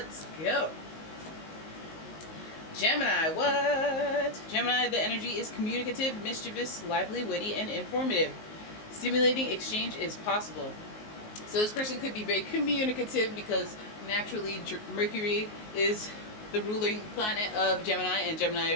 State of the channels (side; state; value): right; late; 19 ms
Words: go. Gemini, what? Gemini, the energy is communicative, mischievous, lively, witty, and informative. Stimulating exchange is possible. So this person could be very communicative because naturally Mercury is the ruling planet of Gemini, and